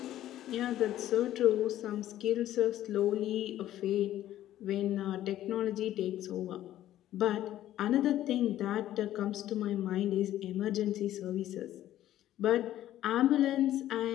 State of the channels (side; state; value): right; quieter; 13.0 dB